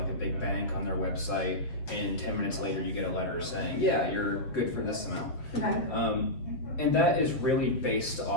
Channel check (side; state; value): right; late; 7.5 ms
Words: a big bank on their website and 10 minutes later you get a letter saying, yeah, you're good for this amount. Okay. And that is really based